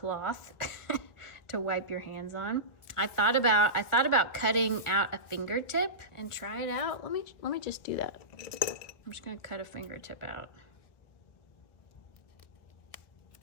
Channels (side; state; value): right; late; 1.4 ms